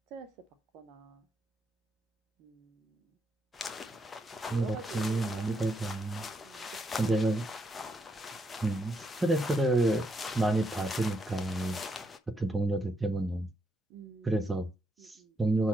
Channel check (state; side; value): normal; both; correlation 0.79